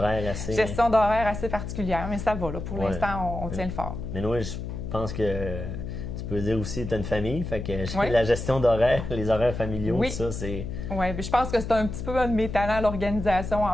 assez... gestion d'horaire assez particulière, mais ça va, là. Pour Ouais. l'instant, on tient le fort. Mais oui, je pense que tu peux dire aussi que tu as une famille. Fait que Oui. la gestion d'horaire, les horaires familiaux, Oui. tout ça, c'est... Oui, je pense que c'est un petit peu un de mes talents, l'organisation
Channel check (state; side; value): noise; left; hum, 6 dB below the sound